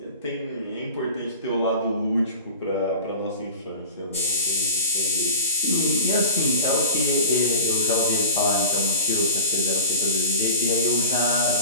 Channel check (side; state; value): both; inverted; correlation -0.36